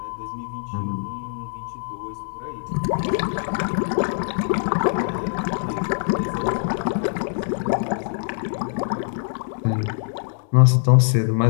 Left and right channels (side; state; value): right; silent; digital silence